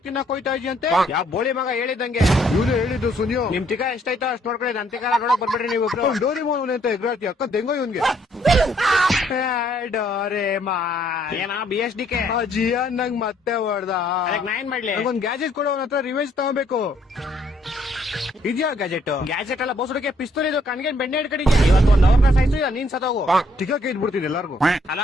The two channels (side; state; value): both; normal; correlation 0.67